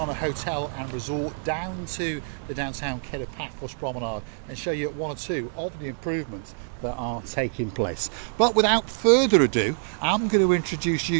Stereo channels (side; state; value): left; silent; digital silence